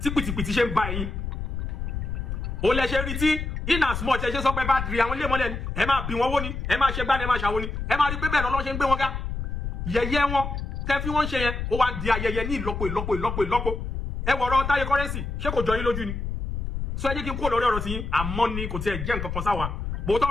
tí pìtìpìtì ṣe ń ba ẹ̀yin ó lẹ ṣe rí tí in as much ẹ ṣe sọ pé bá rí àwọn ilé mọ́lẹ̀ ni ẹ máa bí wọn wó ni ẹ máa ṣe gbá ni ẹ máa ṣàwo ni ẹ máa rí pé bẹ́ẹ̀ lọ́lọ́ ṣe ń gbé wọn ká yẹ̀yẹ́ wọn tẹ́ fi wọ́n ṣe yẹn ó wá ń di ayẹyẹ ní ìlọ́po ẹ wọ̀rọ̀ Táyé Currency ṣé kò jọ yín lójú ni sọ ẹ jẹ́ kí n kó lórí ọ̀rọ̀ tí yín àmọ́ ni kò tiẹ̀ jẹ́ nǹkan kan sáwa bòótọ́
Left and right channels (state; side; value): noise; left; rumble, 4 dB below the sound